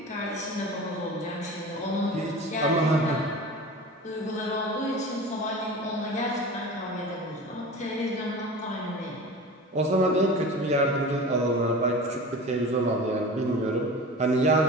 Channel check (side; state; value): both; normal; correlation 0.34